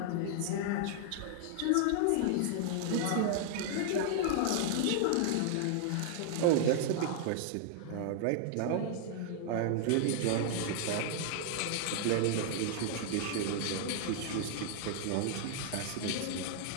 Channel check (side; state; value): both; different; correlation -0.01